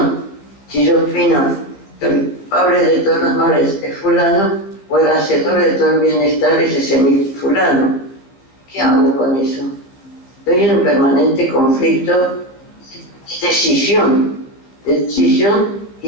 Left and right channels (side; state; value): right; late; 15 ms